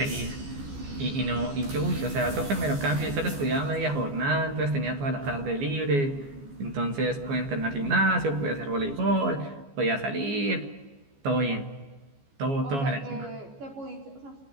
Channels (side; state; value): left; late; 14 ms